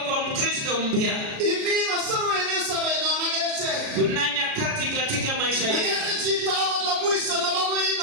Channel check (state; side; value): late; left; 36 ms